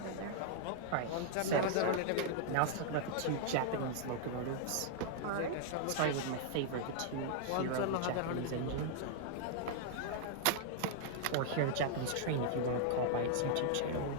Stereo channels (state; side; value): different; both; correlation -0.01